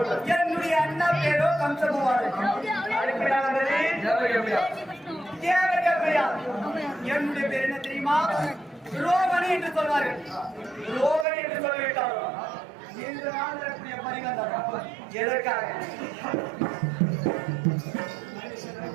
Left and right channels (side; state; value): left; drops out; at 11.2 s